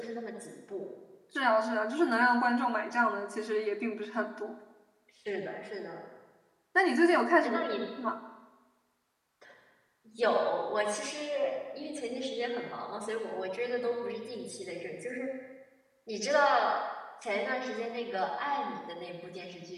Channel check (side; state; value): both; identical; correlation 1.00